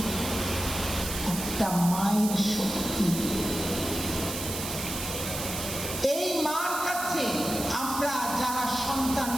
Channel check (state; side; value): noise; right; hiss, 6 dB below the sound